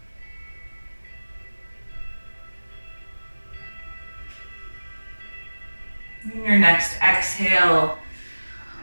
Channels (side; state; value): both; inverted; correlation -1.00